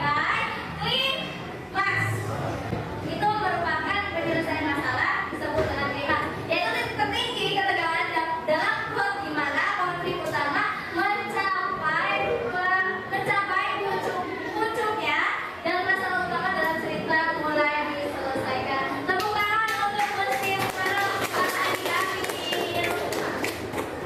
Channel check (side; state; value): both; identical; correlation 1.00